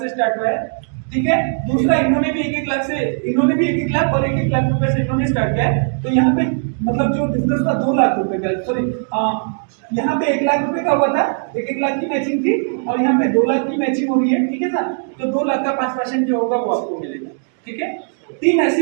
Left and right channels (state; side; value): silent; left; 63 dB below the other